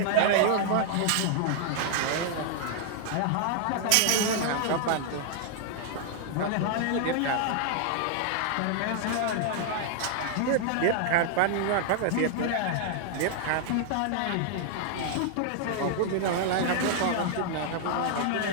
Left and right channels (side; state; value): both; different; correlation 0.00